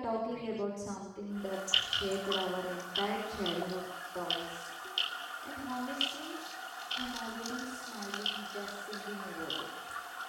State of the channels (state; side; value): identical; both; correlation 1.00